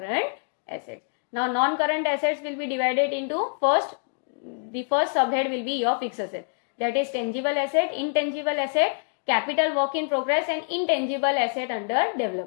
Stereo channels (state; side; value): silent; right; digital silence